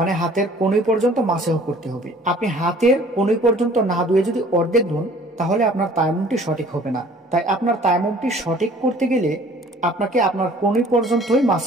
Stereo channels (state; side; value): normal; both; correlation 0.53